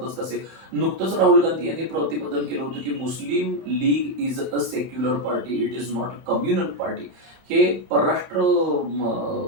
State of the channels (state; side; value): late; left; 31 ms